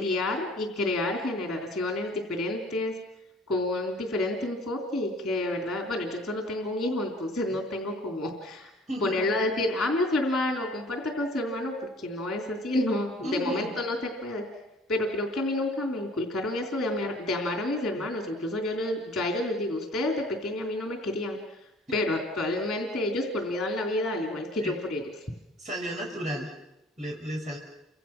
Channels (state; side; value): normal; both; correlation 0.51